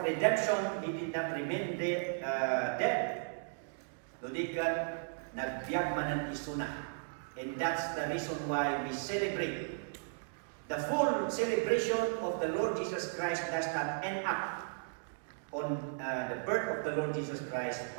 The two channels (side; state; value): left; silent; digital silence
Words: redemption, He did not remain dead. Ludikat, nagbiag man ng isuna. And that's the reason why we celebrate. The full celebration of the Lord Jesus Christ does not end up on the birth of the Lord Jesus Christ,